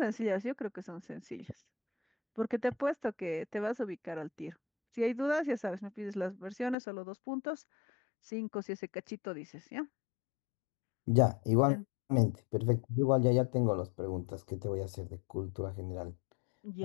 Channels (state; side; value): drops out; right; at 6.8 s